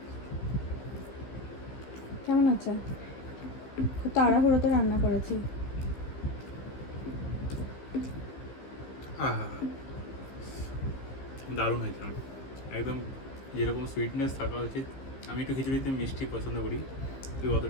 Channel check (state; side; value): late; right; 15 ms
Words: কেমন আছে? খুব তাড়াহুড়োতে রান্না করেছি। দারুণ হয়েছে, একদম যেরকম সুইটনেস থাকা উচিত। আমি একটু খিচুড়িতে মিষ্টি পছন্দ করি, তুই